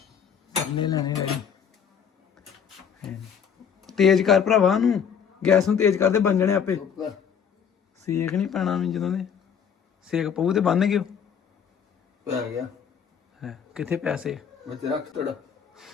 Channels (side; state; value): right; quieter; 7.5 dB